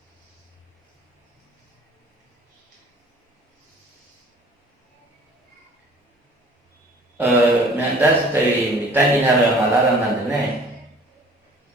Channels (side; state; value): both; normal; correlation 0.50